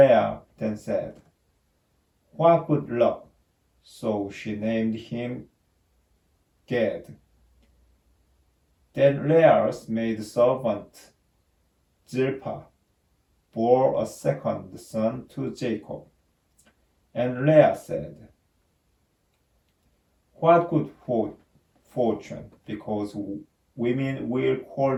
then said, "What good luck!" So she named him Gad. Then Leah's maidservant Zilpah bore a second son to Jacob. And Leah said, "What good fortune, because women will call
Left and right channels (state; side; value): identical; both; correlation 1.00